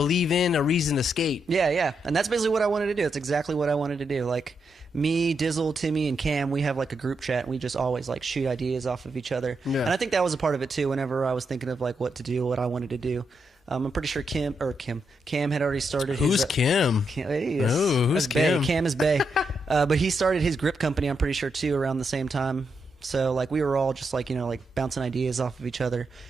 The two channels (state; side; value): normal; both; correlation 0.82